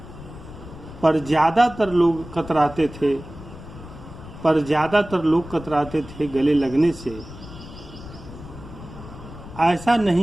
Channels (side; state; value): left; noise; rumble, 15 dB below the sound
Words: पर ज़्यादातर लोग कतराते थे गले लगने से। ऐसा